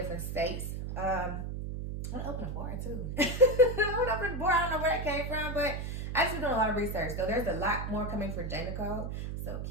states. I want to open a bar too. I want to open a bar. I don't know where that came from, but I just been doing a lot of research. So there's a lot more coming for J. Nicole. So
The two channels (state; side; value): noise; right; hum, 4 dB below the sound